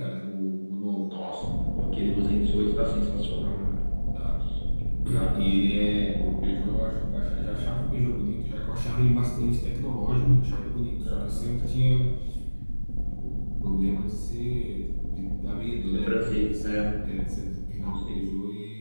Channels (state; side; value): inverted; both; correlation -1.00